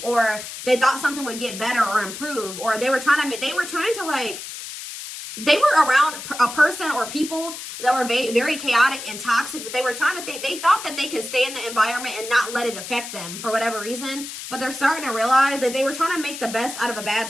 or they thought something would get better or improve, or they were trying to like, they were around a person or people that were very chaotic and toxic, but they were trying to think, they thought that they could stay in the environment and not let it affect them for whatever reason. But they're starting to realize that they were trying to make the best out of a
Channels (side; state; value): left; noise; hiss, 10 dB below the sound